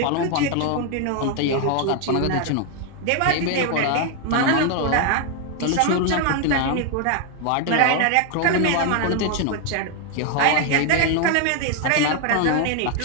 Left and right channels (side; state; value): both; different; correlation 0.00